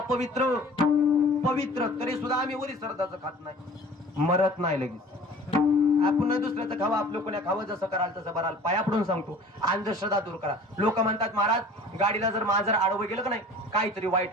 पवित्र. तरी सुद्धा आम्ही वरी श्राद्धाचं खात नाही, मरत नाही लगेच. आपण दुसऱ्याचं खावा, आपलं कोण्या खावं, जसं कराल तसं बराल. पाया पडून सांगतो, अंधश्रद्धा दूर करा. लोक म्हणतात महाराज गाडीला जर मांजर आडवं गेलं का नाही काहीतरी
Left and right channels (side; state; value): both; normal; correlation 0.46